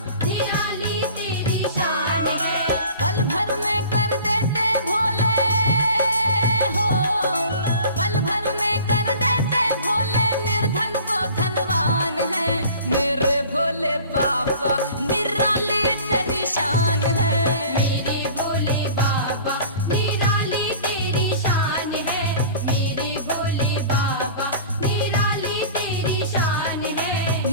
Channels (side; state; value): both; inverted; correlation -0.43